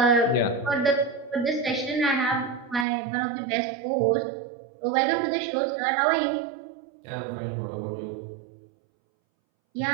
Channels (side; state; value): left; drops out; at 2.9 s